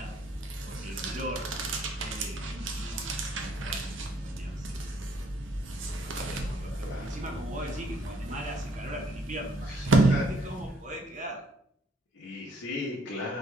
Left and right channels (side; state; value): both; normal; correlation 0.66